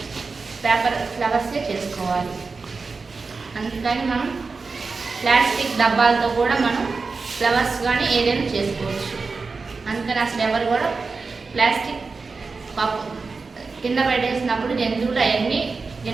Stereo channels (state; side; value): quieter; left; 4.3 dB